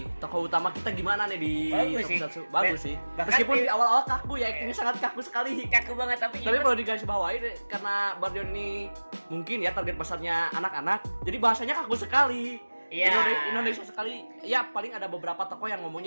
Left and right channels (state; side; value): inverted; both; correlation -1.00